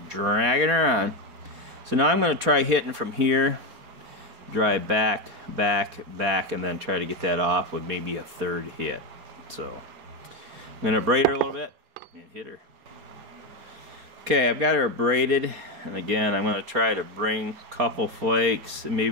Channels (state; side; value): late; left; 4.3 ms